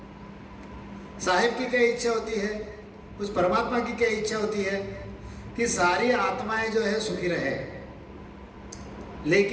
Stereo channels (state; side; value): identical; both; correlation 1.00